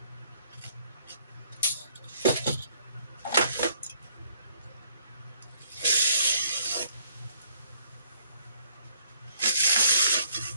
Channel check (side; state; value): both; inverted; correlation -0.65